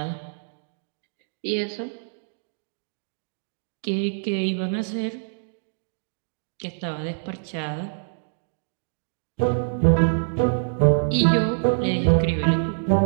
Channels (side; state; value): left; silent; digital silence